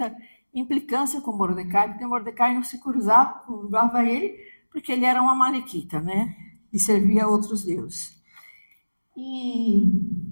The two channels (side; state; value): both; inverted; correlation -1.00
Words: implicância com Mordecai, porque Mordecai não se curvava ele, porque ele era um amalequita, né? E servia a outros deuses. E